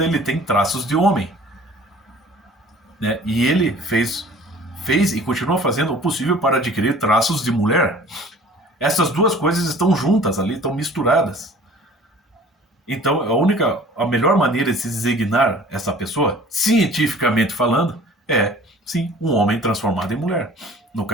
ele tem traços de homem. Né? E ele fez e continua fazendo o possível para adquirir traços de mulher. Essas duas coisas estão juntas ali, estão misturadas. Então, a melhor maneira de se designar essa pessoa, cientificamente falando, é, sim, um homem transformado em mulher. No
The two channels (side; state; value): both; normal; correlation 0.48